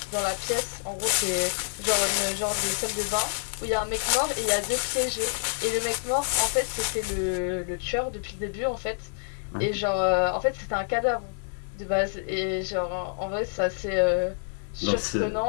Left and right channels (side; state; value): right; silent; digital silence